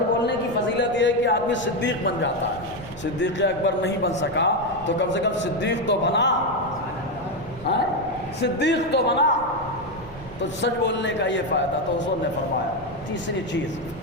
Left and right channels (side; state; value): right; noise; rumble, 17 dB below the sound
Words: بولنے کی فضیلت یہ ہے کہ آدمی صدیق بن جاتا ہے۔ صدیق اکبر نہیں بن سکا تو کم سے کم صدیق تو بنا، صدیق تو بنا۔ تو سچ بولنے کا یہ فائدہ، تو حضور نے فرمایا تیسری چیز